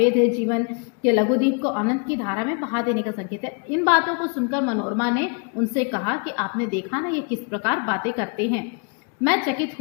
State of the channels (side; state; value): right; quieter; 36.8 dB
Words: है, जीवन के लघुदीप को अनंत की धारा में बहा देने का संकेत है। इन बातों को सुनकर मनोरमा ने उनसे कहा कि आपने देखा ना ये किस प्रकार बातें करते हैं। मैं चकित